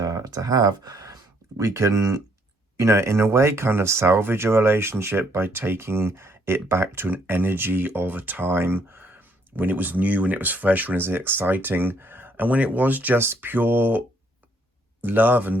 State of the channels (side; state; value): both; normal; correlation 0.68